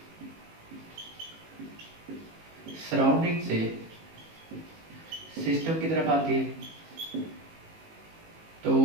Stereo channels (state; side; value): late; left; 18 ms